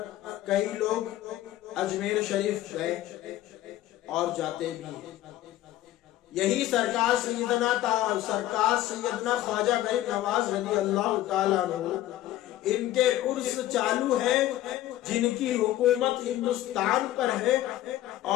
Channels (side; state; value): right; quieter; 14.3 dB